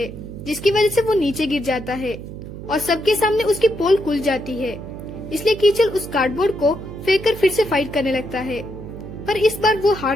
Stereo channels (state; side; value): noise; right; hum, 11 dB below the sound